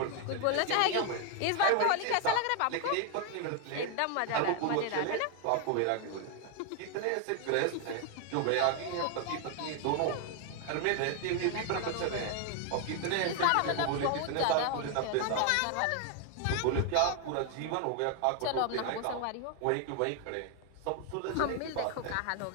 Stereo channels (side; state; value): both; different; correlation 0.00